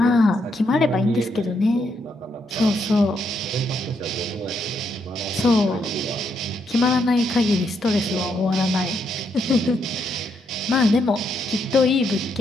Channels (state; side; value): normal; both; correlation 0.77